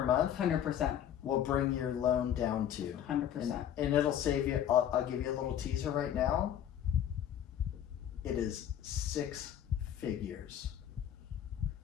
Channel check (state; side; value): quieter; right; 10.1 dB